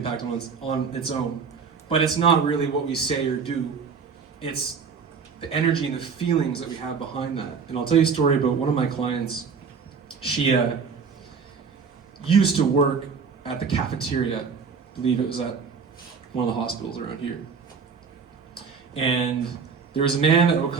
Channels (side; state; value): left; quieter; 5.7 dB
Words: on its own. But it's not really what we say or do. It's the energy and the feelings that we have behind that. And I'll tell you a story about one of my clients. She used to work at the cafeteria. I believe it was at one of the hospitals around here. And there was a man that would